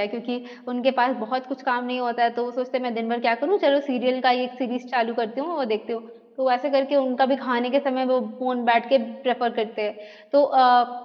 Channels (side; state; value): both; identical; correlation 1.00